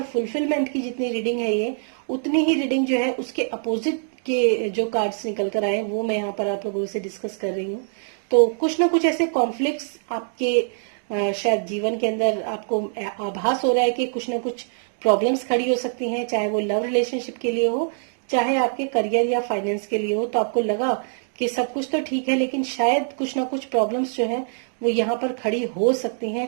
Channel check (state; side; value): silent; left; 63 dB below the other